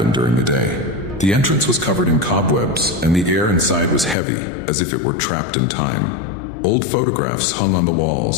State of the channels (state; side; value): drops out; right; at 4.2 s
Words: during the day. The entrance was covered in cobwebs, and the air inside was heavy, as if it were trapped in time. Old photographs hung on the